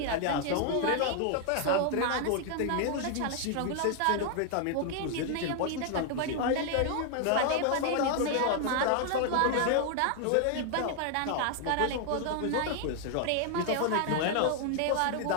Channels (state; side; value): different; both; correlation 0.00